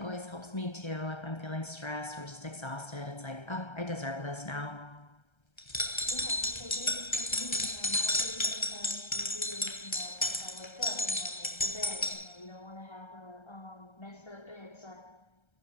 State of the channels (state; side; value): late; right; 1.3 ms